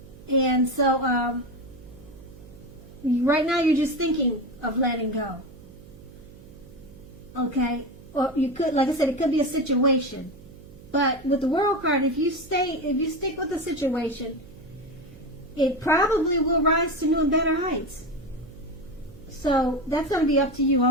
And so right now you're just thinking of letting go. Okay? Or you could, like I said, it could be a situation. But with the World card, if you stick with the situation, it probably will rise to new and better heights. So that's going to be up to you.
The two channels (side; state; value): right; noise; hum, 20 dB below the sound